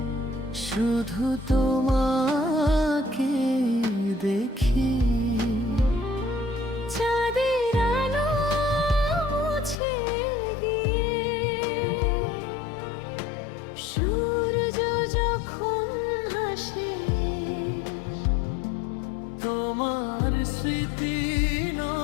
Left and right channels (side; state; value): right; drops out; at 9.8 s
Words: শুধু তোমাকে দেখি। চাঁদের আলো মুছে গিয়ে সূর্য যখন হাসে, তোমার স্মৃতি